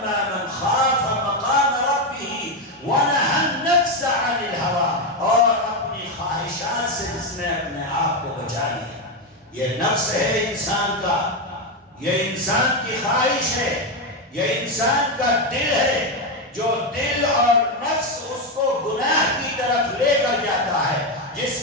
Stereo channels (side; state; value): both; normal; correlation 0.08